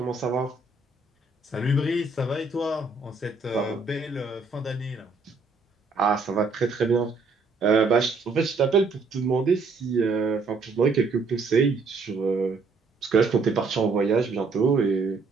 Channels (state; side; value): quieter; left; 4.0 dB